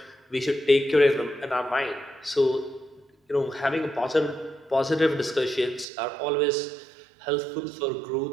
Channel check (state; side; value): drops out; left; at 5.9 s